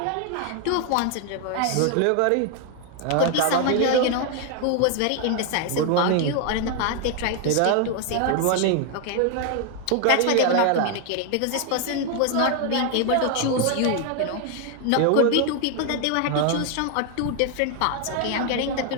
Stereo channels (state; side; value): different; both; correlation 0.00